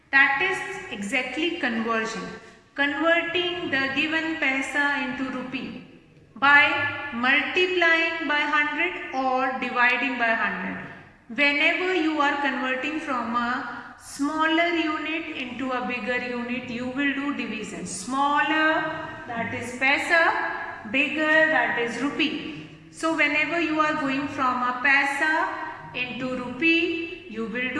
That is exactly conversion. Converting the given paisa into rupee by multiplying by 100 or dividing by 100. Whenever you are converting from a smaller unit into a bigger unit, you will do division. Smaller, that is paisa, bigger, that is rupee. So whenever you are going from a paisa into rupee, you will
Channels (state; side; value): identical; both; correlation 1.00